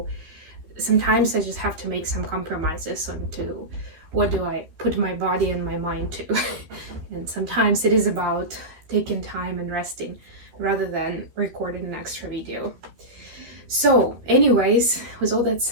sometimes I just have to make some compromises on to what do I put my body and my mind to. And sometimes it is about taking time and resting rather than recording an extra video. So anyways, with all that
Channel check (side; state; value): left; late; 13 ms